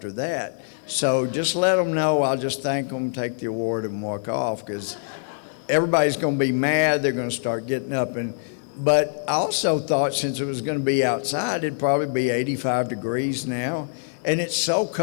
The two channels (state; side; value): silent; right; digital silence